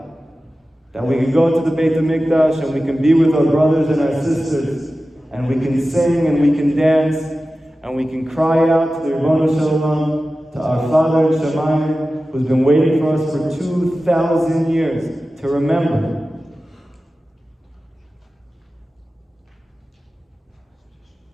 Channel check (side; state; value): both; normal; correlation 0.95